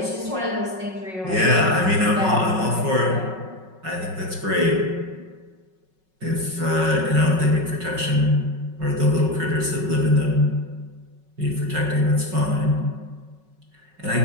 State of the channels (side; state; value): left; late; 5.4 ms